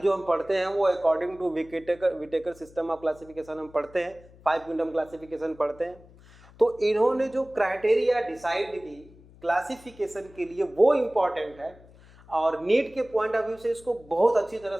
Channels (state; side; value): noise; left; hum, 24 dB below the sound